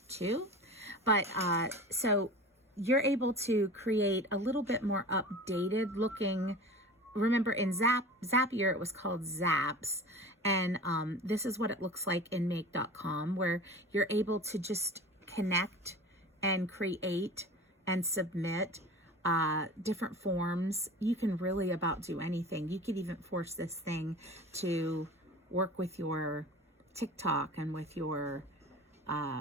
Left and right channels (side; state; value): both; normal; correlation 0.37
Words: 2. But so you're able to create a little bit more updated looking. Remember, in Zapier, it was called Zaps. And this is what it looks like in Make.com, where you're able to just connect and create and submit different forms. You can really about do anything. You could even force this thing to work with your TikTok and with your